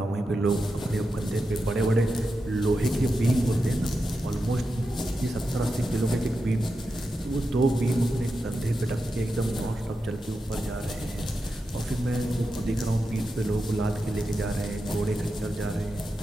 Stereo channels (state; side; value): normal; both; correlation 0.89